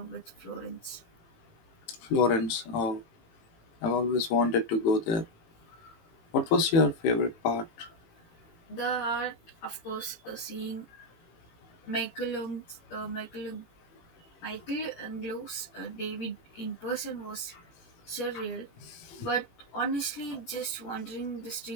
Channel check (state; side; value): late; right; 18 ms